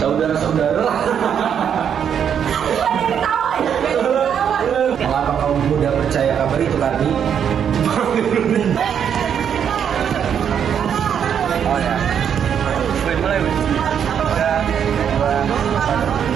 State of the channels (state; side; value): quieter; left; 8.3 dB